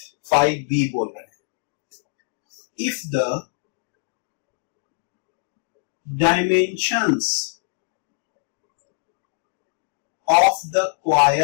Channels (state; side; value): silent; right; digital silence